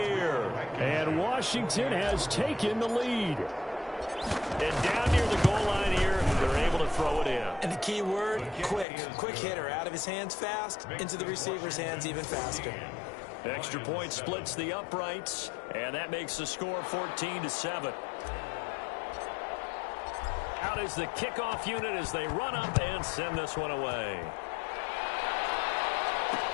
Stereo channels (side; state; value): right; drops out; at 8.8 s